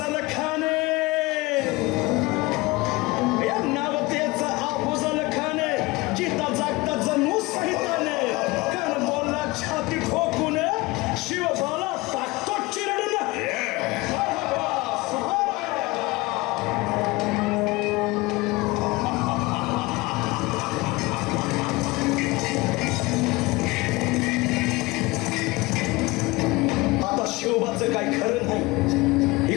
खान. या नवतेचं अफजल खान जिता जागता जणू सहिताने कान बोलला छाती ठोकून, शिवबाला टाकतो चिरडून.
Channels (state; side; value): quieter; right; 22.3 dB